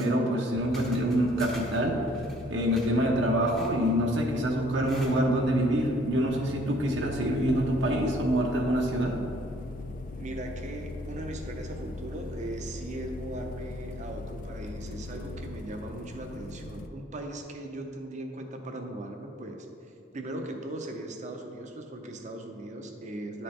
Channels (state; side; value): normal; both; correlation 0.60